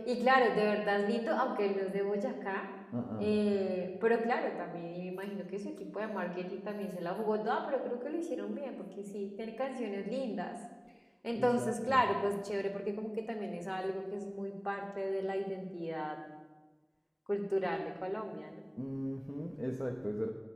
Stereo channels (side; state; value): both; identical; correlation 1.00